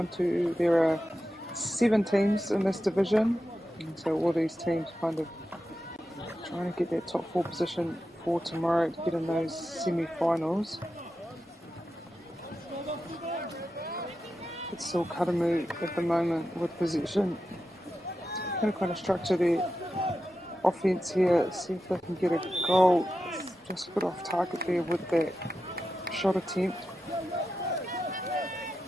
There are 7 teams in this division, and so all these teams kind of trying to get that top 4 position for tomorrow to get in those semi-finals. It's still Karamu at the moment with possession. Going to kind of structure their offense here, see if they can get a goal. Just a bit off target there with that shot attempt.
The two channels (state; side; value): normal; both; correlation 0.90